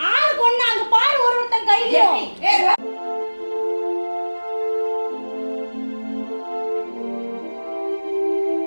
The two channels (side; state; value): both; inverted; correlation -1.00